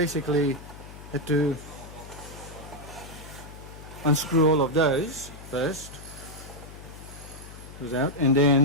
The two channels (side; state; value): left; noise; hum, 15 dB below the sound